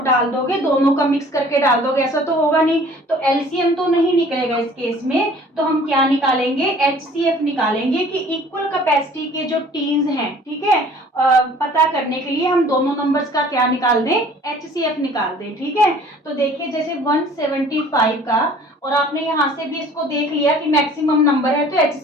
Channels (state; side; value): normal; both; correlation 0.51